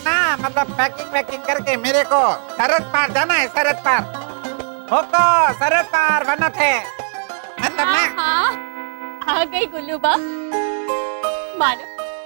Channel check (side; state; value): left; silent; digital silence